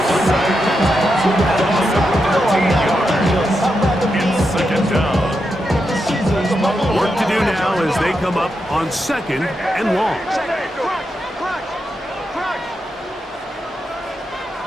Second down. Work to do now as they come up on second and long.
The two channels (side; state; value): both; normal; correlation 0.86